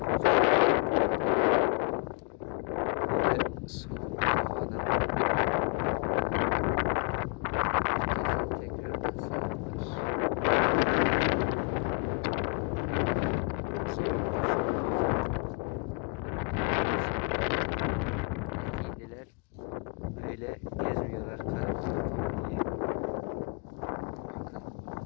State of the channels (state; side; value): quieter; right; 38.5 dB